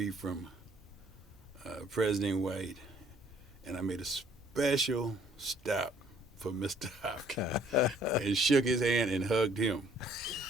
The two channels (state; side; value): normal; both; correlation 0.61